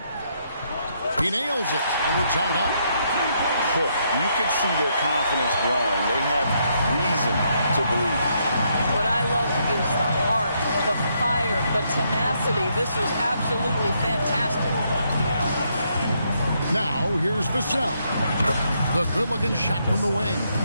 He nails it, and we're tied up. You can see their confidence growing. They have reason to believe. What I love is the heart, the fire, the tenacity. This is absolutely fantastic. Now, here's Vassell. The good-looking shot from the wing.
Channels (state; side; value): inverted; both; correlation -0.75